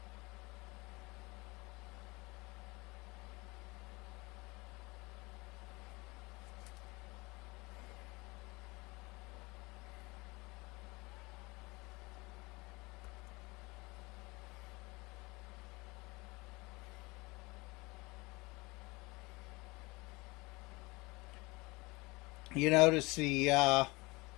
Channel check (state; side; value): quieter; right; 24.2 dB